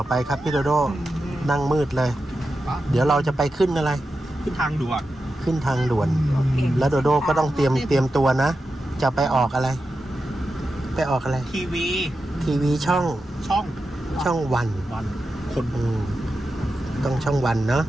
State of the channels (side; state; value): both; normal; correlation 0.90